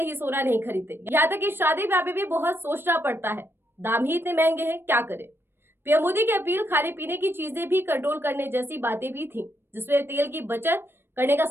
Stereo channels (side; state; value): left; late; 0.10 ms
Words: ही सोना नहीं खरीदते, यहाँ तक कि शादी ब्याह में भी बहुत सोचना पड़ता है। दाम ही इतने महंगे हैं, क्या करें। पीएम मोदी की अपील खाने पीने की चीजें भी कंट्रोल करने जैसी बातें भी थी, जिसमें तेल की बचत करने का